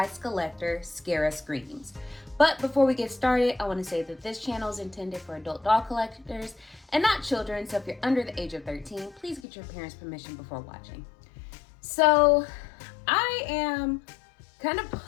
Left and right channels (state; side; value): drops out; right; at 9.4 s